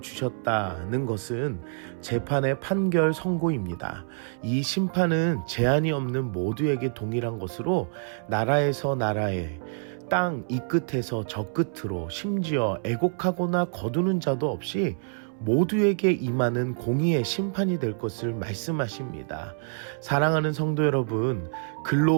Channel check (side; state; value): left; silent; 60 dB below the other